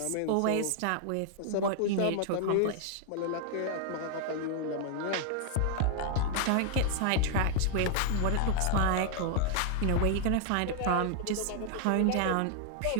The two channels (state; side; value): different; both; correlation 0.00